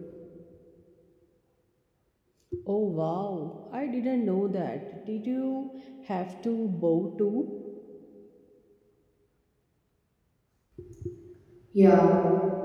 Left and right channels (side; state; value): both; identical; correlation 1.00